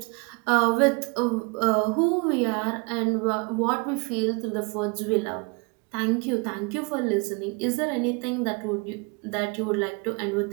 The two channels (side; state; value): left; quieter; 31.1 dB